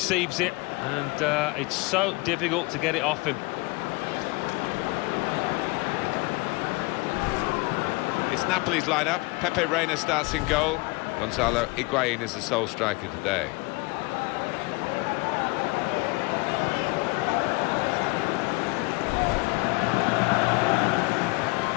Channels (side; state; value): right; quieter; 25.2 dB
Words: it, and it's so difficult to get it off him. It's Napoli's lineup. Pepe Reina starts in goal. Gonzalo Higuain is the sole striker today.